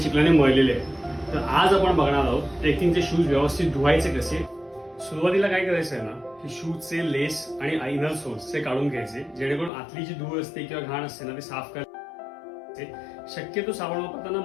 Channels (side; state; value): right; drops out; at 9.7 s